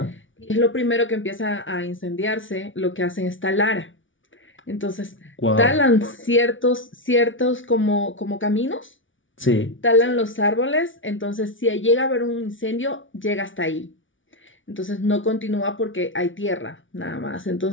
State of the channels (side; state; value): right; late; 0.56 ms